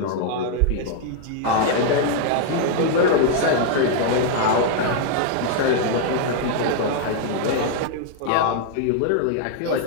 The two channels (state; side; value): different; both; correlation 0.00